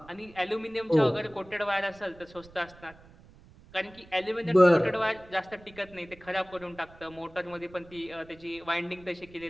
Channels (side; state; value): right; noise; rumble, 23 dB below the sound